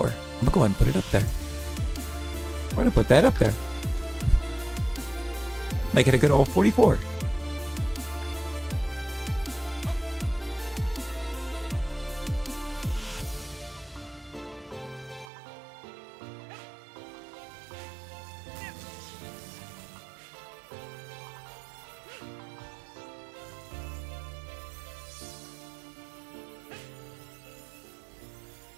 I'm gonna go ahead and put it up there. I'm gonna put that up there. Make it a good old 44.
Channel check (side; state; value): left; drops out; at 15.2 s